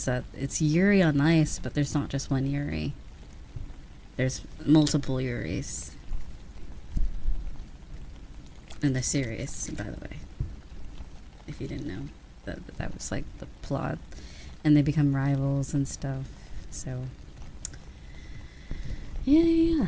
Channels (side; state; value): both; identical; correlation 1.00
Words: that it's Yuri on Ice, but there's not just one Yuri. There's multiple Yuris in the series, by the way. If you didn't know, that was like the plot, and they become rivals and stuff. So, yeah.